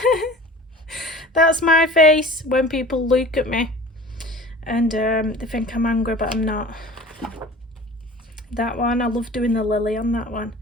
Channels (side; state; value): both; normal; correlation 0.41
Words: That's my face when people look at me and they think I'm angry, but I'm not. That one, I love doing the lily on that one.